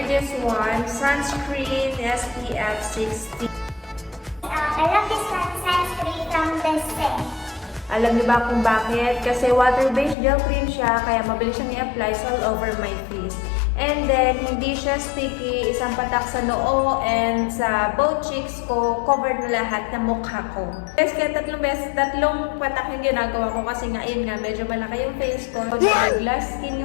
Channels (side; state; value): right; drops out; at 10.2 s